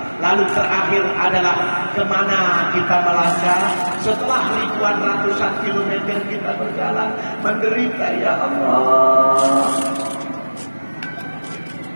Lalu terakhir adalah kemana kita melangkah setelah ribuan ratusan kilometer kita berjalan menderita ya Allah.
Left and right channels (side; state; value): both; inverted; correlation -1.00